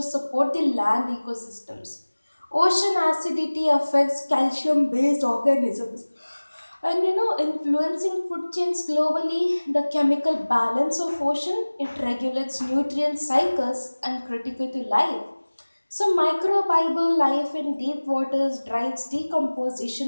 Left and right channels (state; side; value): inverted; both; correlation -1.00